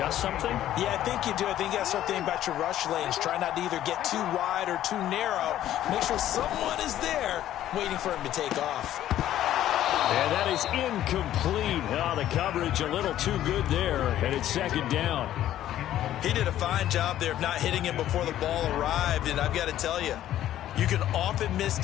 something? Yeah, I think you do. I think you got to start thinking about your rush lanes. Try not to either get too wide or too narrow. Make sure someone is there waiting for him to take off. And that is incomplete. Oh, the coverage a little too good there, and it's second down. He did a fine job there of not hitting him before the ball arrived, and I've got to tell you, you can often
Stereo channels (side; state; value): right; quieter; 12.5 dB